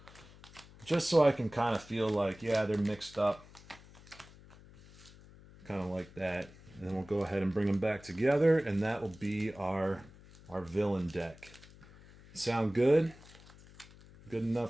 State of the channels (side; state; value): left; noise; hum, 22 dB below the sound